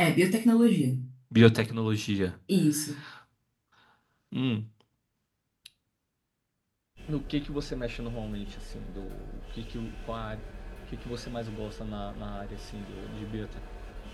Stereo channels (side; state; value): both; identical; correlation 1.00